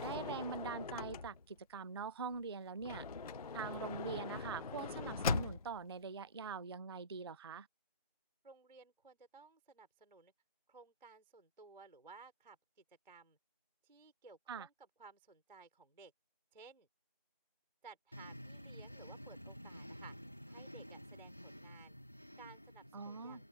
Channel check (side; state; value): both; inverted; correlation -0.34